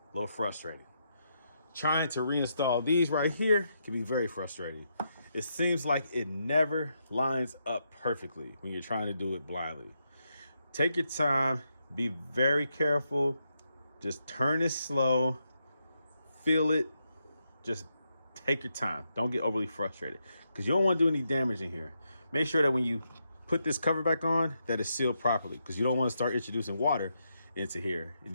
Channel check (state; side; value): inverted; both; correlation -0.82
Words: little frustrating. Trying to reinstall these right here can be very frustrating. it seems like it never lines up perfectly when you're trying to do it blindly. Take your time, be very careful, just turn it slow, feel it, just take your time. Don't get overly frustrated because you don't want to do any damage in here. Make sure that when you put this cover back on, that it's sealed properly, because you don't want to start introducing water into here